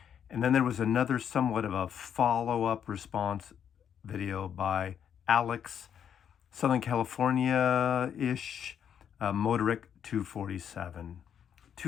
And then there was another somewhat of a follow-up response video by Alex, Southern California-ish, Motoric 247.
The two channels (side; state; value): right; quieter; 8.5 dB